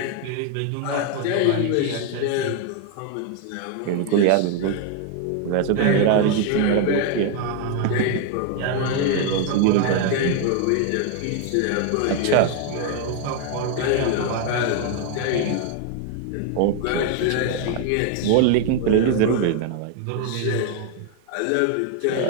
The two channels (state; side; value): different; both; correlation 0.01